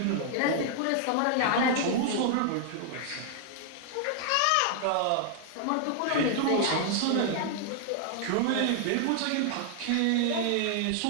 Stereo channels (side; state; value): both; different; correlation 0.00